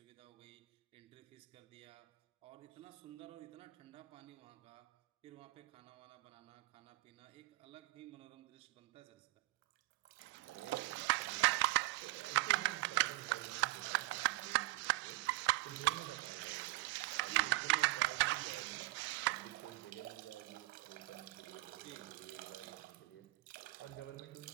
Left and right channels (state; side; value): quieter; left; 19.9 dB